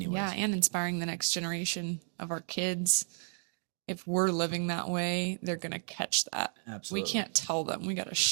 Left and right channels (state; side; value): silent; left; 56 dB below the other